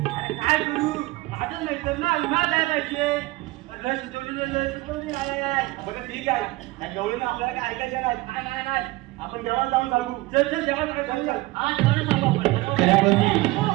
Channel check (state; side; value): quieter; left; 20.1 dB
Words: अरे काय करू, माझं नाही तर ना विमा द्यायला पाहिजे. लय सुचवली आहे. बरं ठीक आहे, त्या गवळीनं आपल्याला काय ऐकायचं नाही. नाही आपण देवाला जाऊन सांगू. चल जेवण चल चल. हा जेवण सांगू आपण.